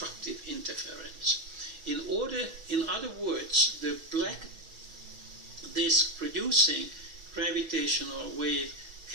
interference. In other words, the black disk producing gravitational wave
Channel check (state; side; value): late; left; 6.2 ms